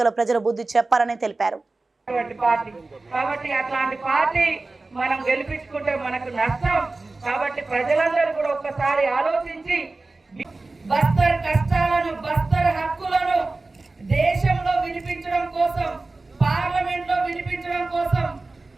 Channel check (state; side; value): quieter; left; 3.4 dB